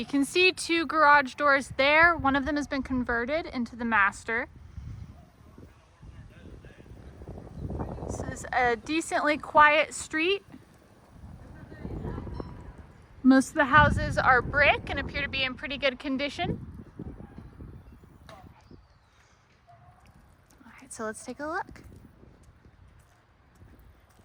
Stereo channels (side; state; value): both; identical; correlation 1.00